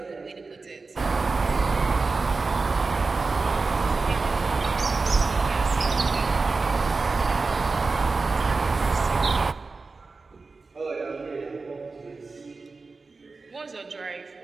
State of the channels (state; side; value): quieter; left; 4.0 dB